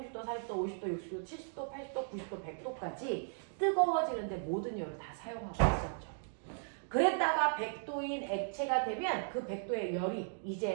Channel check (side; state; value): left; silent; digital silence